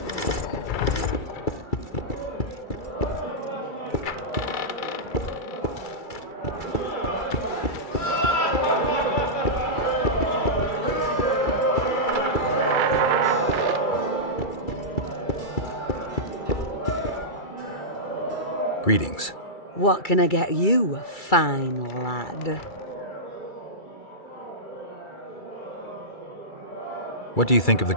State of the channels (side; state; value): right; late; 2.3 ms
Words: Greetings. What can I get you, fine lad? What do you think of the